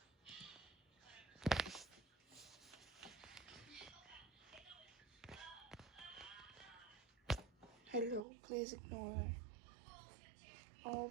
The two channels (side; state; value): left; drops out; at 8.2 s